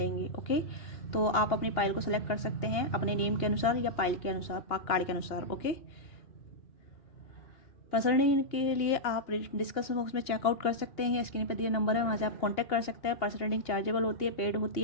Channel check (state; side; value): late; right; 2.8 ms